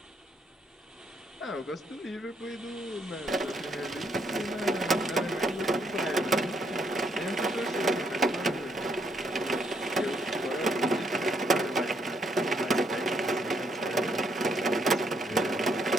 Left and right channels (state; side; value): normal; both; correlation 0.72